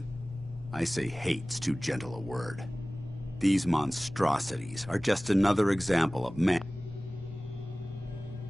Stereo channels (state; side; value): normal; both; correlation 0.98